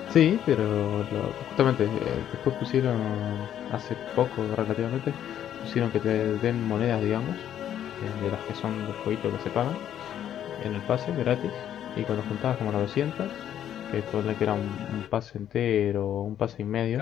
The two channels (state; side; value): quieter; right; 10.5 dB